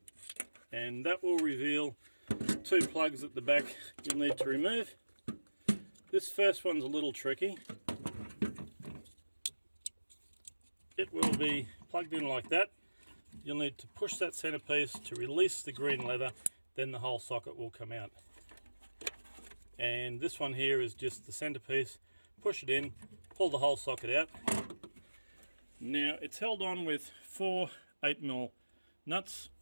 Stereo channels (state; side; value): inverted; both; correlation -1.00